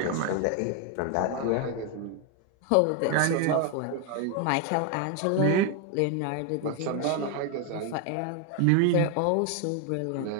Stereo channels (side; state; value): both; different; correlation 0.01